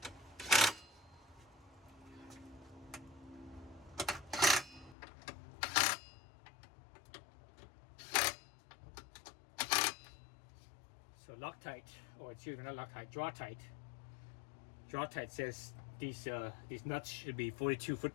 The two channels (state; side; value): drops out; right; at 5.0 s